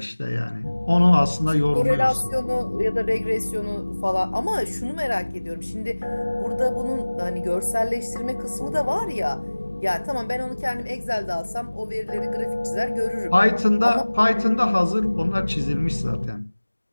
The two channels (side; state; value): both; inverted; correlation -1.00